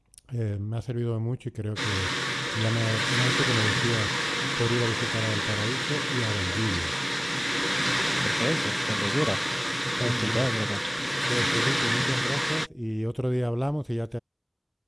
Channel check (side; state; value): both; identical; correlation 1.00